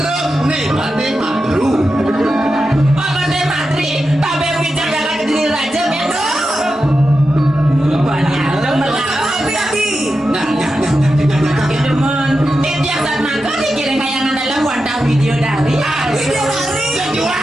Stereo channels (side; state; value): both; normal; correlation 0.90